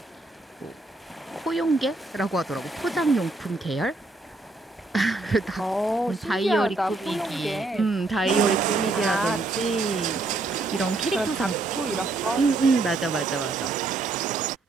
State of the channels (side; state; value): left; quieter; 3.2 dB